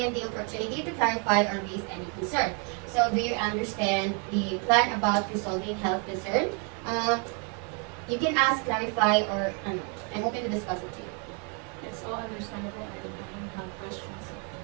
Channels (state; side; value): quieter; left; 37.4 dB